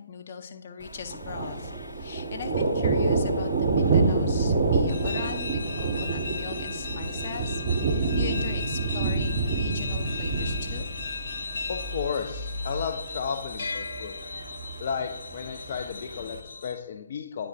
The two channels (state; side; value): inverted; both; correlation -0.61